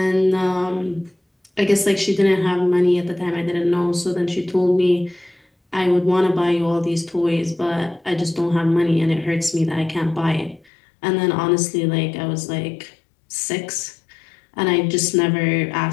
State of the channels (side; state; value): right; drops out; at 10.7 s